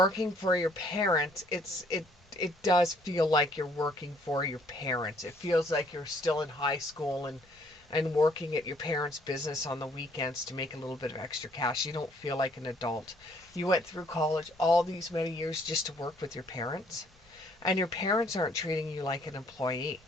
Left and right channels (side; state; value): both; normal; correlation 0.63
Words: for your parents, it does feel like you're working for your parents. It feels like you're still in high school and working at your parents' business on the weekends to make a little bit of extra cash. You don't feel like an adult. You went through college all these many years just to work with your parents, and your parents aren't treating you like an employee.